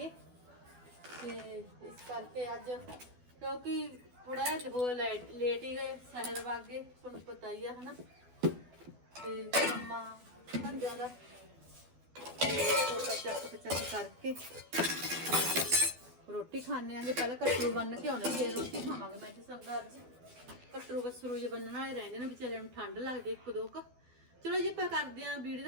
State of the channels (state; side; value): late; left; 12 ms